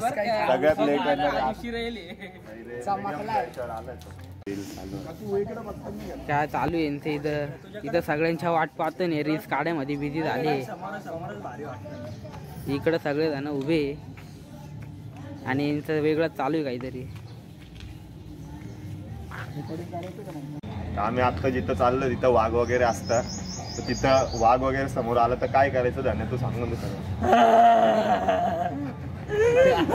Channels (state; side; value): identical; both; correlation 1.00